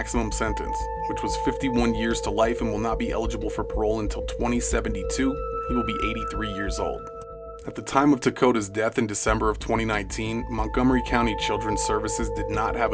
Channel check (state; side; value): identical; both; correlation 1.00